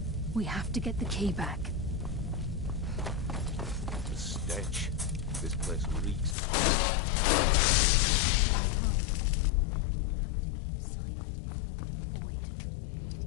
We have to get the key back. The stench. This place reeks. We have to keep silent if we want to avoid.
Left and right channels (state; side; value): drops out; right; at 6.4 s